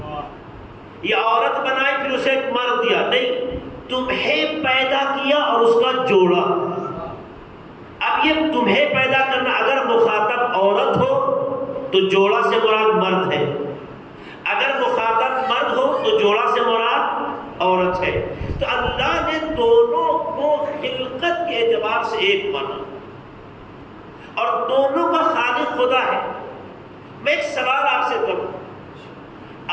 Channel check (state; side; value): identical; both; correlation 1.00